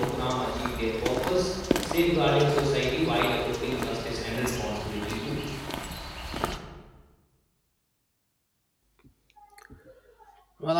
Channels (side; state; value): both; identical; correlation 1.00